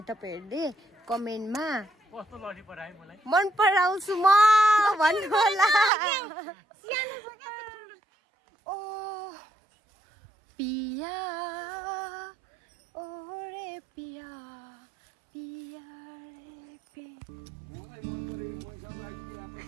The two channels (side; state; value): left; drops out; at 5.9 s